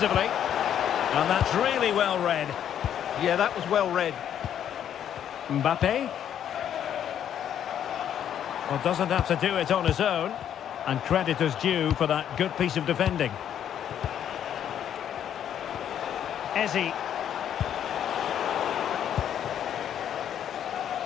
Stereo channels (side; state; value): right; quieter; 9.7 dB